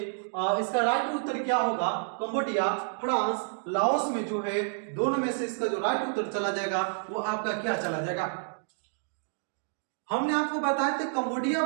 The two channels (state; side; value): silent; left; digital silence